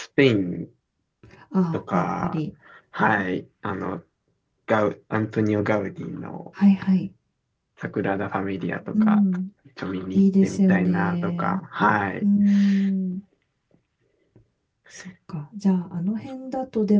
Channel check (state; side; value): identical; both; correlation 1.00